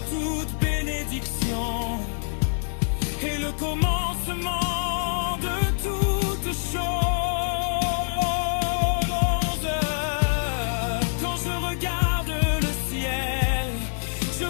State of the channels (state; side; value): silent; right; digital silence